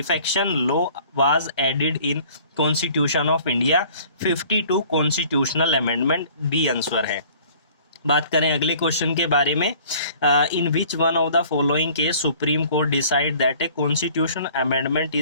law was added in constitution of India. 52 constitutional amendment B answer है। बात करें अगले क्वेश्चन के बारे में, in which one of the following case Supreme Court decide that a constitution amendment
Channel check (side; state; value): both; inverted; correlation -0.52